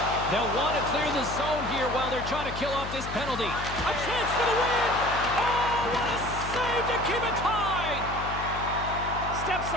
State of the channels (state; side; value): noise; left; hum, 8 dB below the sound